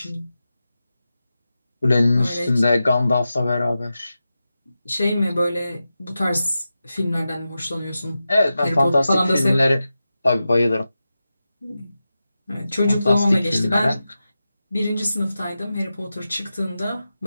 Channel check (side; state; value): both; inverted; correlation -0.92